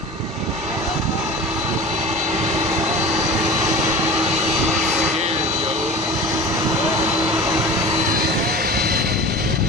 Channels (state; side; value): normal; both; correlation 0.35